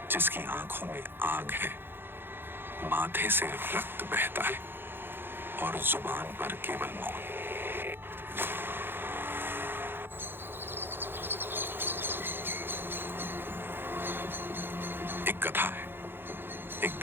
जिसकी आंखों में आग है, माथे से रक्त बहता है और जुबान पर केवल मौन। एक कथा है, एक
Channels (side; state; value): left; late; 0.10 ms